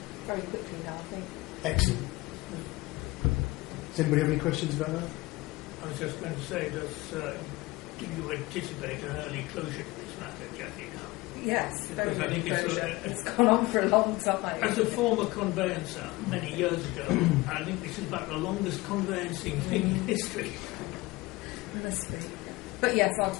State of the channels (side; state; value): right; quieter; 21.1 dB